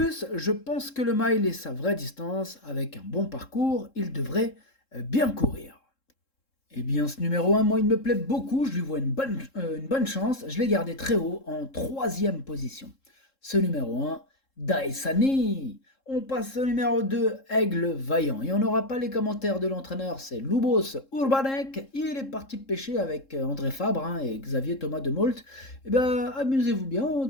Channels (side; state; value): right; late; 3.7 ms